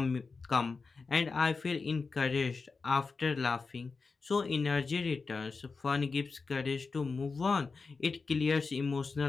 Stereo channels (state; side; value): quieter; right; 4.4 dB